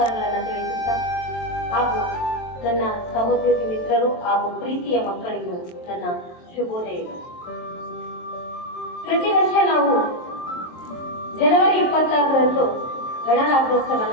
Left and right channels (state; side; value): late; right; 23 ms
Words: ತಿಳಿಸುತ್ತಾ ಹಾಗೂ ನನ್ನ ಸಹೋದ್ಯೋಗಿ ಮಿತ್ರರು ಹಾಗೂ ಪ್ರೀತಿಯ ಮಕ್ಕಳಿಗೂ ನನ್ನ ಶುಭೋದಯಗಳು. ಪ್ರತಿ ವರ್ಷ ನಾವು ಜನವರಿ 26ರಂದು